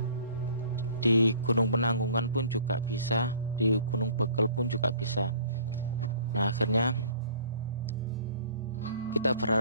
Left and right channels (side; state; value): both; inverted; correlation -0.50